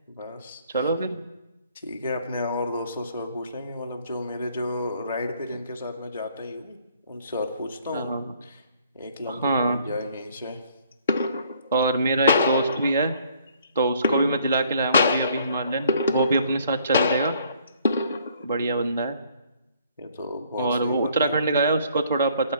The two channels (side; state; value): both; inverted; correlation -0.62